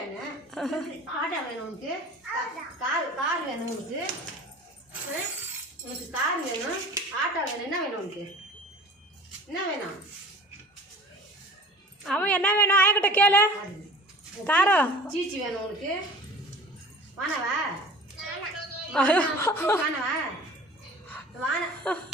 ஆட்டோ வேணும் உனக்கு? கார் வேணும் உனக்கு? உனக்கு கார் வேணும், ஆட்டோ வேணும். என்ன வேணும் உனக்கு? என்ன வேணும்? அவன் என்ன வேணும் ஆயக்கிட்ட கேளு. காரோ சீச்சி வேணும் உனக்கு? வானவா வானவா வான.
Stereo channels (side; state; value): both; normal; correlation 0.42